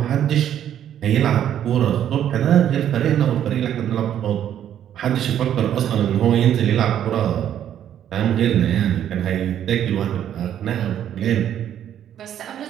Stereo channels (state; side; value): quieter; left; 10.3 dB